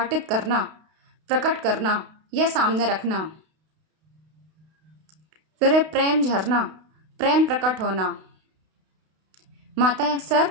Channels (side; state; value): left; late; 32 ms